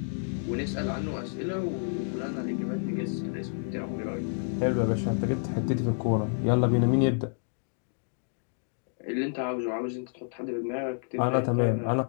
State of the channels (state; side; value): silent; right; digital silence